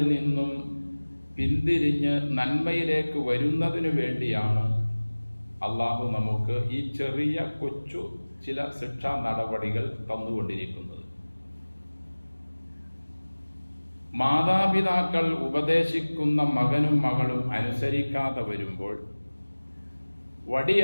നിന്നും പിന്തിരിഞ്ഞ് നന്മയിലേക്ക് വരുന്നതിനു വേണ്ടിയാണ് അള്ളാഹു നമുക്ക് ഈ ചെറിയ കൊച്ചു ചില ശിക്ഷാ നടപടികൾ തന്നുകൊണ്ടിരിക്കുന്നത്. മാതാപിതാക്കൾ ഉപദേശിക്കുന്ന മകനും മകളും അനുസരിക്കാതെ വരുമ്പോൾ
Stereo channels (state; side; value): inverted; both; correlation -1.00